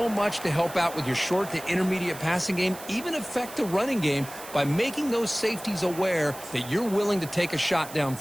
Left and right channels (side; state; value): right; noise; hiss, 15 dB below the sound